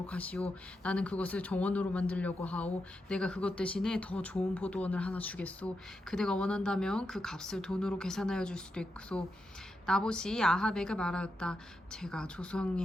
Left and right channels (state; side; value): normal; both; correlation 0.86